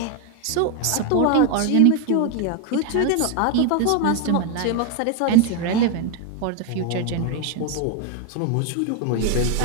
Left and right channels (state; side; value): different; both; correlation 0.01